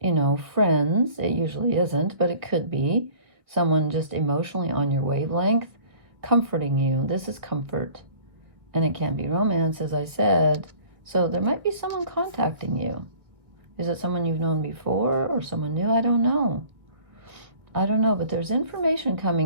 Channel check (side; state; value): left; late; 1.7 ms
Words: friends. It usually isn't, but it could be someone just emotionally on your wavelength, comforting you. This is comfort. And it can be romance, as I said. So there might be someone contacting you. Is it someone you've known before or someone new? I don't know, but there's information